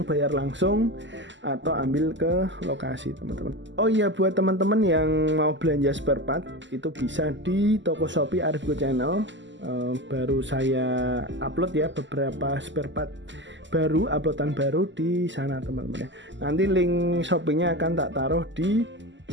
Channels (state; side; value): late; left; 0.54 ms